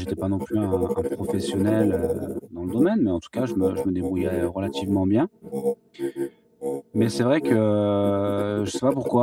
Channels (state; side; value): identical; both; correlation 1.00